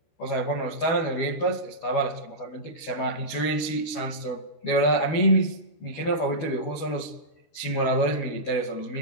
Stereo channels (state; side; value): late; right; 12 ms